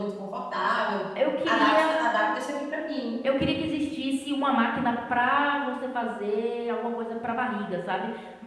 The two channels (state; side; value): identical; both; correlation 1.00